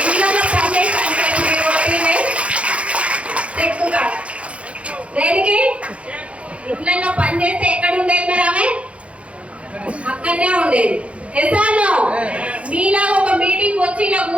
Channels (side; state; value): left; late; 0.062 ms